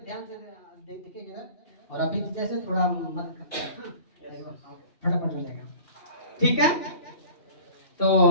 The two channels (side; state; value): right; late; 2.7 ms